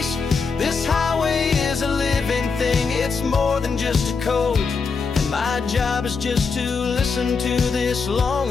This highway is a living thing, it's more than just a code. And my job is just to listen to this long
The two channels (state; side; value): quieter; right; 5.0 dB